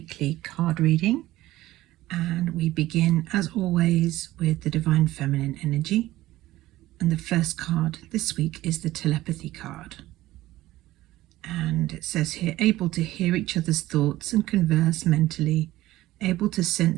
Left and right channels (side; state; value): left; quieter; 16.3 dB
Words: card reading, and we begin as always with the Divine Feminine energy, and the first card this week is the Telepathy card, and it says here, able to hear each other's thoughts and converse mentally, able to